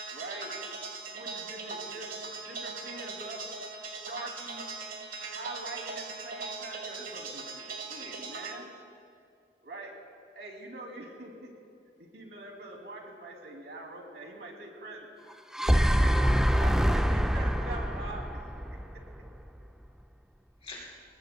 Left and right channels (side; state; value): both; normal; correlation 0.86